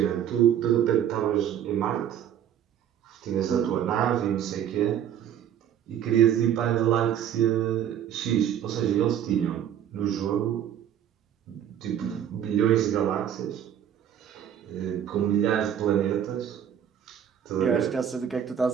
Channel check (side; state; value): left; quieter; 9.8 dB